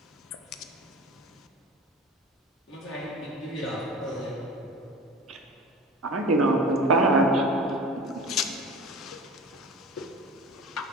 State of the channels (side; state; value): both; normal; correlation 0.36